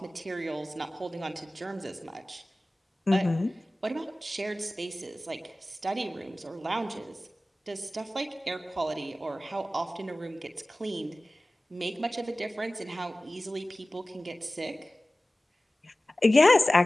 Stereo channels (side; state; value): both; normal; correlation 0.97